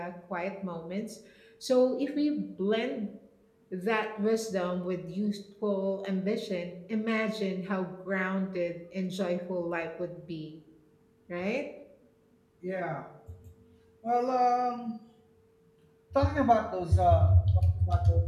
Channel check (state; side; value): identical; both; correlation 1.00